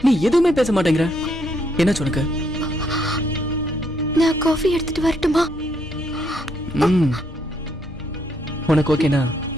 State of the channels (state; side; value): normal; both; correlation 0.73